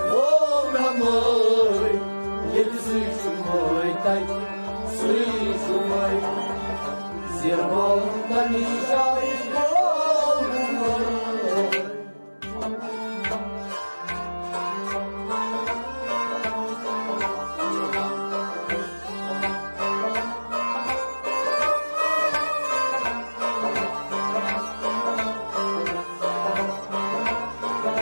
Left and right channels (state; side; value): inverted; both; correlation -1.00